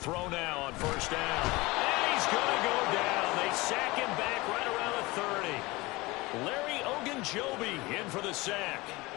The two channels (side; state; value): right; quieter; 22.2 dB